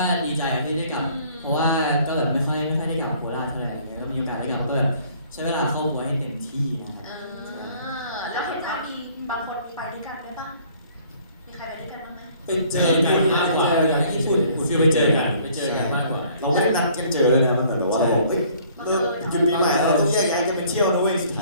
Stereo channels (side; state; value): both; inverted; correlation -0.57